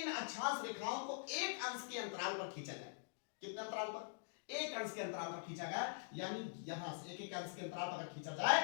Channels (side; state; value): right; silent; digital silence